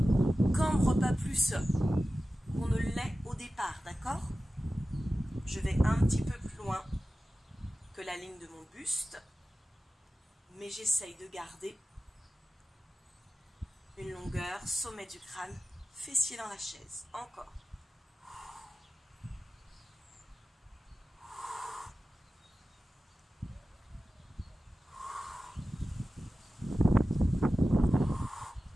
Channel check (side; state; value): both; normal; correlation 0.95